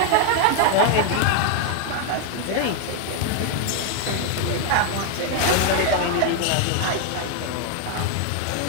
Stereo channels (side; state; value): both; different; correlation 0.00